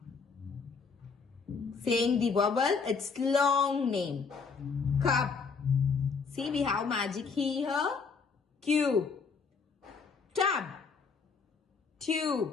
Saying the vowel, its long name. Cup. See, we have magic E here. Cube. Tub.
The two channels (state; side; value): quieter; right; 5.2 dB